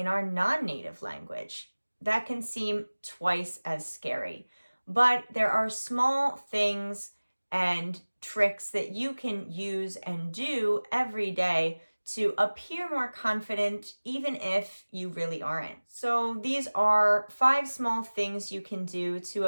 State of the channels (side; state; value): both; inverted; correlation -1.00